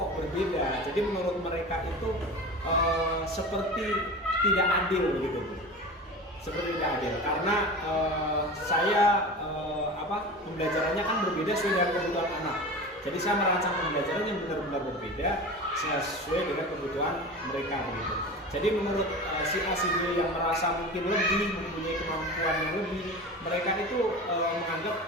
berbeda. Jadi menurut mereka itu seperti tidak adil gitu, Bu. Seperti tidak adil karena saya pembelajarannya kan berbeda sesuai dengan kebutuhan anak. Jadi saya merancang pembelajaran yang benar-benar berbeda sesuai dengan kebutuhan mereka begitu. Jadi menurut si A si B yang merasa mungkin lebih mempunyai kemampuan yang lebih, mereka itu menganggap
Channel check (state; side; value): normal; both; correlation 0.32